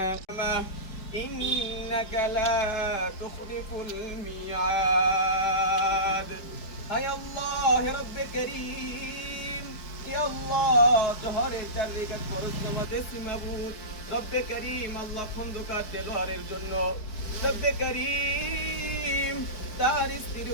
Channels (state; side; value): late; right; 4.7 ms